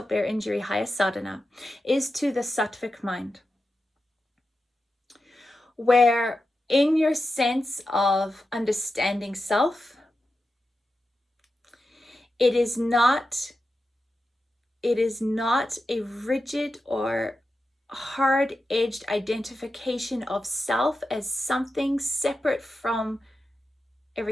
bear injury, highest sadhana, is to the sattvic mind. Where in your sense of understanding self, it is not a rigid or hard-edged identification of self as something separate from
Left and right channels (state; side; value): normal; both; correlation 0.90